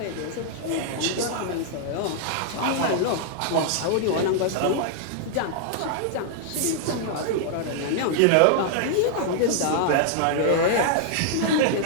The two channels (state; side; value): different; both; correlation -0.01